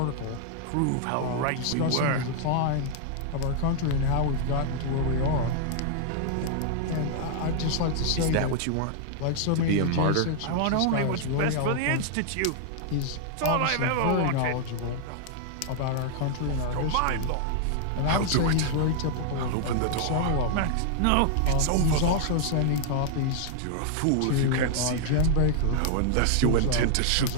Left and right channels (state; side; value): different; both; correlation 0.00